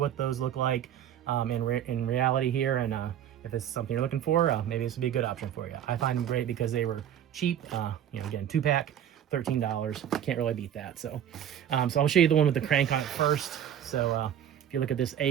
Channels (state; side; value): quieter; left; 10.1 dB